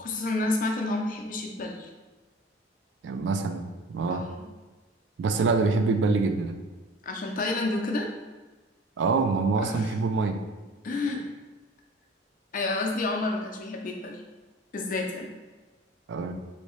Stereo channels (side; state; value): both; normal; correlation 0.44